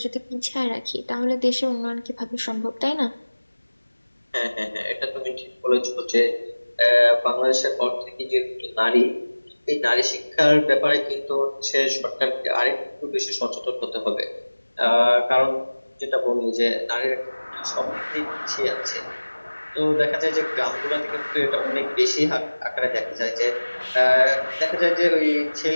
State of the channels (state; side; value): inverted; both; correlation -1.00